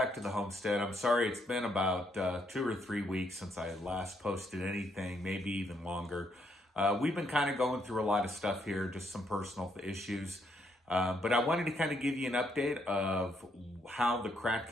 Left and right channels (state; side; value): normal; both; correlation 0.74